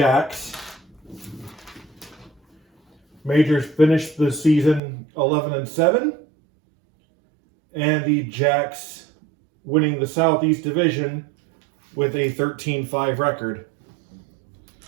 Majors finished the season 11-7. And the Jacks winning the Southeast Division with a 13-5 record.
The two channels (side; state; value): left; drops out; at 4.8 s